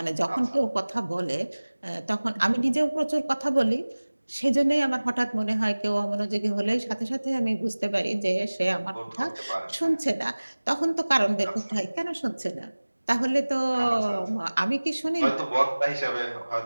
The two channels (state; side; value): inverted; both; correlation -1.00